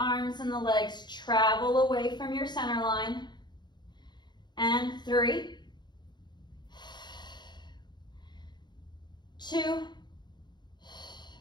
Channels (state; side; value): late; right; 0.21 ms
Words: and the legs travel away from your center line. And 3, 2,